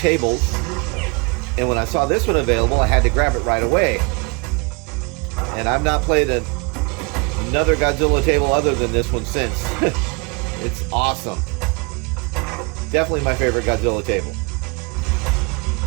and when I saw this one available, I had to grab it right away. And I've not played another Godzilla table other than this one since. It's awesome. Definitely my favorite Godzilla table.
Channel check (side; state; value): left; quieter; 30.5 dB